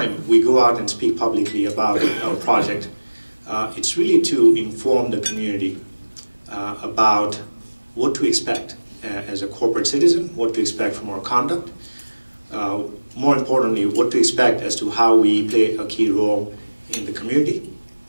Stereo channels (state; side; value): inverted; both; correlation -1.00